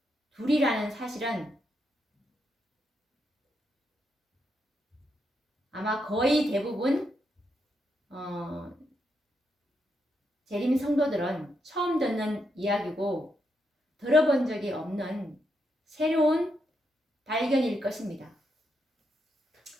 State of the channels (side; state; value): both; normal; correlation 0.81